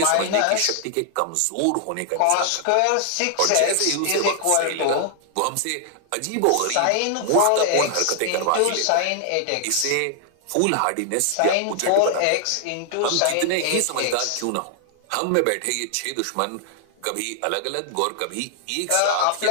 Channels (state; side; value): different; both; correlation 0.00